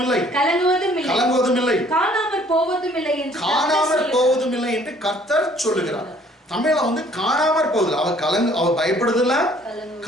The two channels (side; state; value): both; normal; correlation 0.58